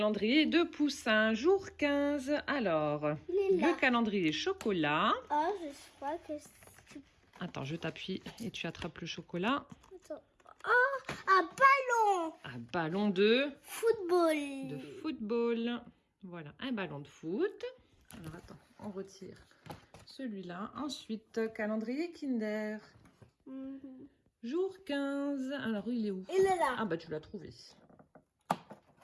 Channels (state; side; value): identical; both; correlation 1.00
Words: de Poussin, jour 15. Alors, le calendrier chocolat. Oh, je crois que c'est... Attends, je t'appuie et tu attrapes le chocolat. Attends. Oh, un ballon. Un ballon de Football. football. Voilà, un ballon de foot. Alors attends, on retire celui-là. Ensuite, calendrier Kinder. Jour 15. Alors, il est où? Il est là. Ah bah, tu l'as trouvé.